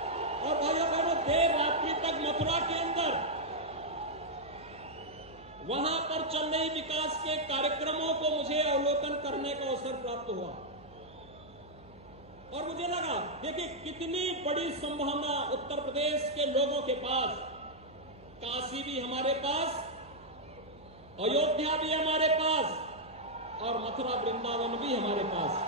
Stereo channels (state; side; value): noise; right; hum, 23 dB below the sound